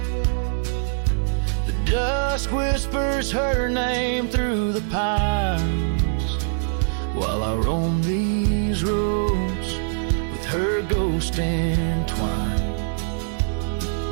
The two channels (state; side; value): silent; left; 63 dB below the other